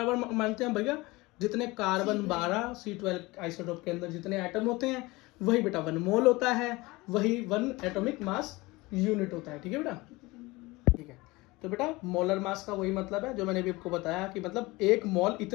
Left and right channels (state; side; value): quieter; right; 22.1 dB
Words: मानते हैं भैया? जितने कार्बन 12 C12 आइसोटोप के अंदर जितने एटम होते हैं वही बेटा 1 मोल होता है, वही 1 एटॉमिक मास यूनिट होता है। ठीक है बेटा? ठीक है। तो बेटा मोलर मास का वही मतलब है जो मैंने अभी आपको बताया, कि मतलब 1 मोल